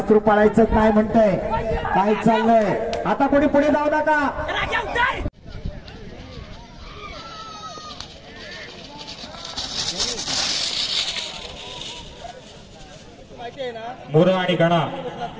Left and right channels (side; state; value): both; identical; correlation 1.00